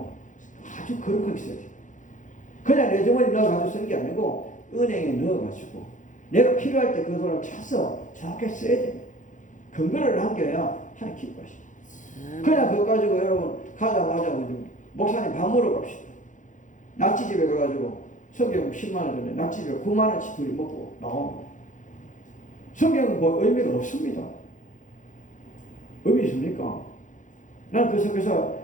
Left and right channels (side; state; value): right; late; 0.37 ms